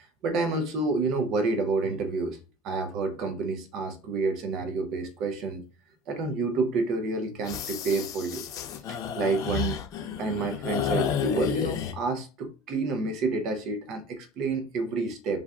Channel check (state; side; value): normal; both; correlation 0.44